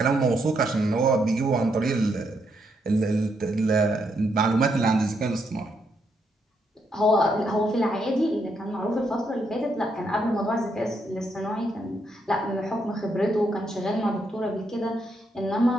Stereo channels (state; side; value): normal; both; correlation 0.77